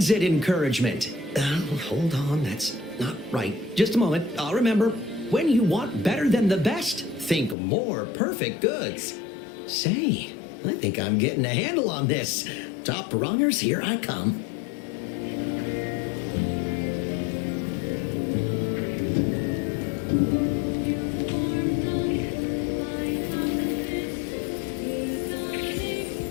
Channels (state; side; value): drops out; right; at 7.6 s